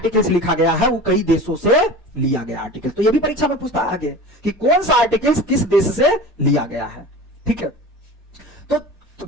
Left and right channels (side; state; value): both; normal; correlation 0.35